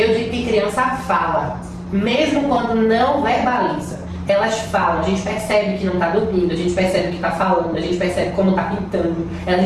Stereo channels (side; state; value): both; identical; correlation 1.00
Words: digo que criança fala, mesmo quando não verbaliza. Elas falam, a gente percebe que não está dormindo, a gente percebe que está falando, a gente percebe como está pintando, a